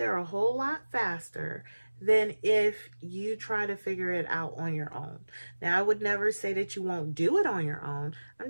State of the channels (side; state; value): both; inverted; correlation -1.00